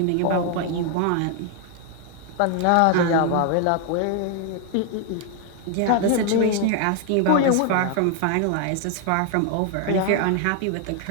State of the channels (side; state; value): both; different; correlation 0.00